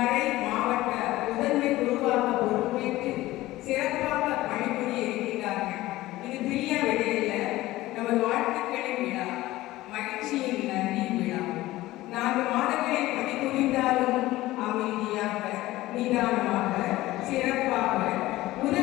மாவட்ட முதன்மை குருவாக பொறுப்பேற்று சிறப்பாக பணிபுரிய இருக்கிறார்கள். இது பிரியா விடையில நமது வாழ்த்துக்களின் விழா, மகிழ்ச்சியின் நன்றி விழா. 4 மாதங்களை பணிபுரிந்தாலும் அமைதியாக, நிதானமாக, சிறப்பாக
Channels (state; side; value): quieter; right; 17.2 dB